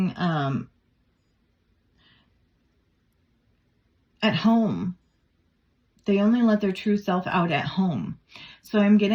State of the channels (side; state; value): both; identical; correlation 1.00